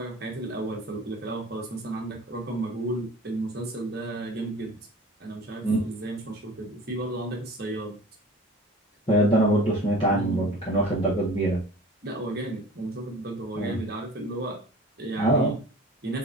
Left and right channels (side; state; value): both; normal; correlation 0.42